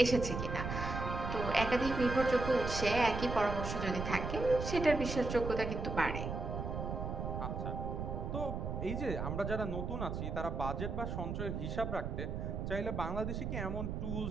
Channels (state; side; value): noise; right; rumble, 3 dB below the sound